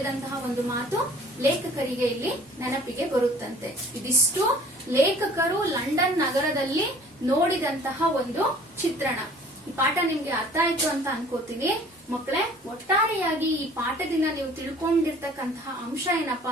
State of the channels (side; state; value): both; normal; correlation 0.51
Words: ಒಂದು ಮಾತು ಲೇಖಕರಿಗೆ ಇಲ್ಲಿ ನೆನಪಿಗೆ ಬರುತ್ತಂತೆ. ಇದಿಷ್ಟು ಲೇಖಕರು ಲಂಡನ್ ನಗರದಲ್ಲಿ ನೋಡಿದಂತಹ ಒಂದು ಚಿತ್ರಣ. ಈ ಪಾಠ ನಿಮ್ಗೆ ಅರ್ಥ ಆಯ್ತು ಅಂತ ಅನ್ಕೋತೀನಿ ಮಕ್ಕಳೇ. ಒಟ್ಟಾರೆಯಾಗಿ ಈ ಪಾಠದಿಂದ ನೀವು ತಿಳ್ಕೊಂಡಿರ್ತಕ್ಕಂತಹ ಅಂಶ ಏನಪ್ಪಾ